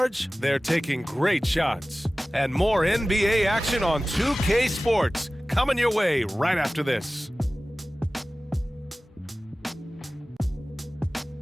they're taking great shots. And more NBA action on 2K Sports coming your way right after this.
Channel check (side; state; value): both; normal; correlation 0.97